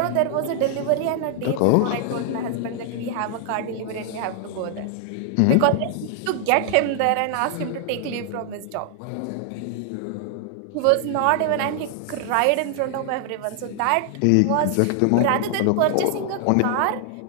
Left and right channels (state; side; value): different; both; correlation 0.00